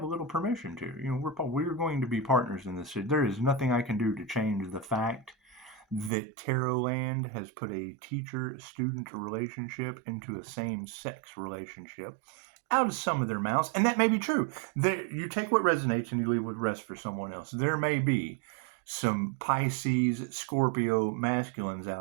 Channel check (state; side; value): drops out; left; at 6.1 s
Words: a little permission to. We're going to be partners in this. There is nothing I can do to change the fact that Tarot Land has put a teacher-student relationship into a same-sex relationship out of some of their mouths, and that may be true. You take what resonates and you leave what rests for someone else. There may be some Pisces, Scorpio masculines